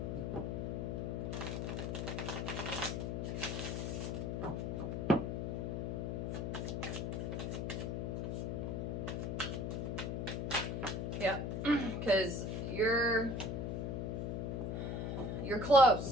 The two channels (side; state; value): left; noise; hum, 1 dB below the sound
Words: Yeah, because you're